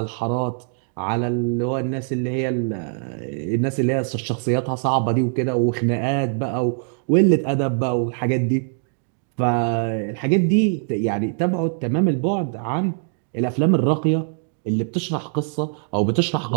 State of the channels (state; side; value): silent; left; 61 dB below the other